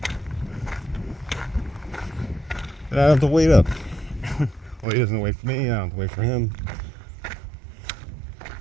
I don't have to wait up. Well, he doesn't wait for me, I don't have to wait for him.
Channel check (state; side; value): drops out; left; at 4.9 s